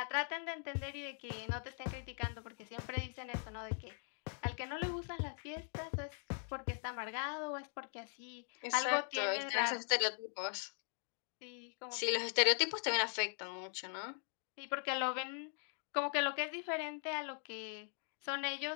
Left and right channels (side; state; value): right; silent; 51 dB below the other